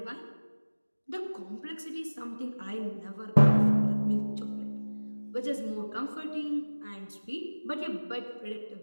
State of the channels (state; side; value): inverted; both; correlation -1.00